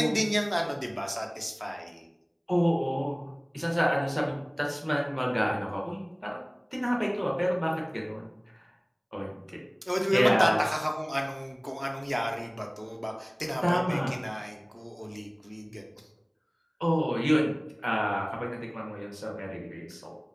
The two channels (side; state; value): both; identical; correlation 1.00